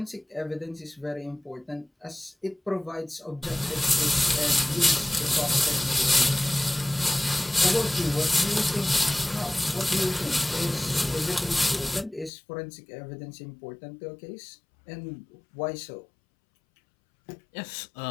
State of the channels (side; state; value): right; drops out; at 12.3 s